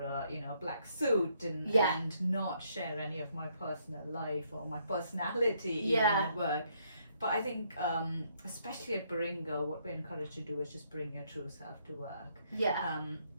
a black suit and not share any of my personal life or my personality even at work. But I think, especially at Baringa, what we're encouraged to do is just bring your true self to work. Yeah.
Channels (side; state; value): both; inverted; correlation -0.71